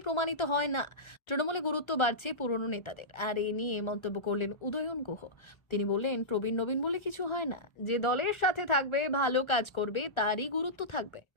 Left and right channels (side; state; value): right; late; 1.3 ms